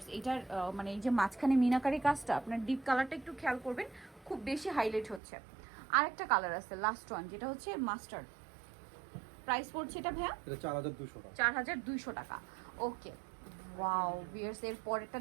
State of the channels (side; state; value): left; drops out; at 5.2 s